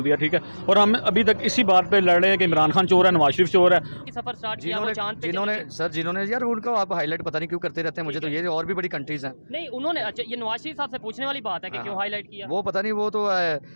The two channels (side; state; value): both; inverted; correlation -1.00